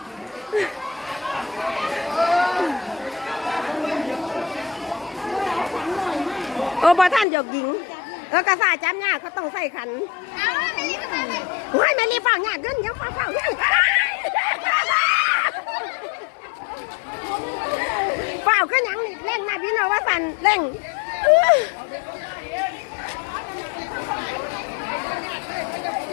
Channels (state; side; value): drops out; right; at 7.2 s